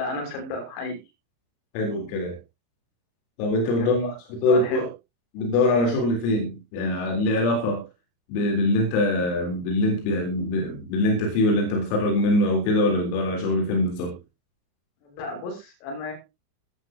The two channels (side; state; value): right; late; 34 ms